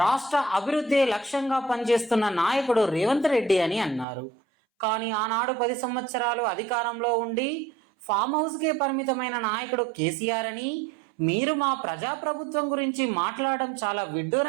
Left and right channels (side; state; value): left; drops out; at 4.0 s